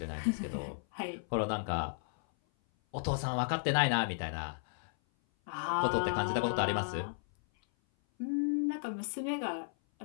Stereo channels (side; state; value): right; silent; 55 dB below the other